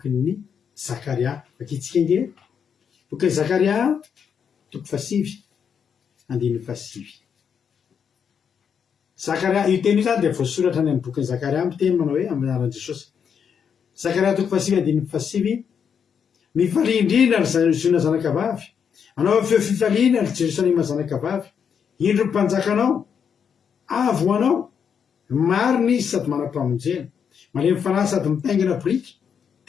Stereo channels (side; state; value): right; quieter; 7.2 dB